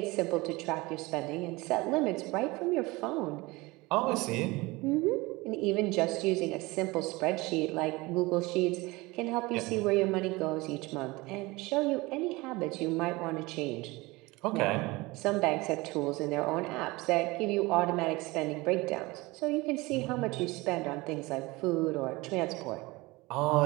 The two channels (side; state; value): left; quieter; 22.6 dB